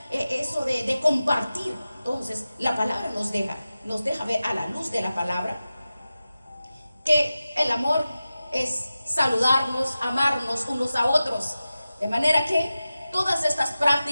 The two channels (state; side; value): inverted; both; correlation -0.94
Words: eso de compartir. Entonces la palabra nos deja ver, a la luz de la palabra, que el amor es saludarnos, amarnos unos a otros. De manera que todas estas